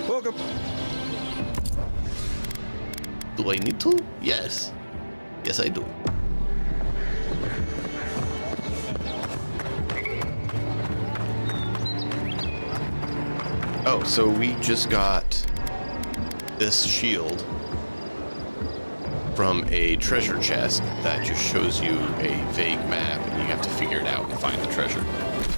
Welcome. Do I need to? Yes. Yes, I do. Oh, so we just got this shield from a treasure chest that just shows you a vague map, and you have to figure it out and find the treasure.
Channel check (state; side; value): inverted; both; correlation -1.00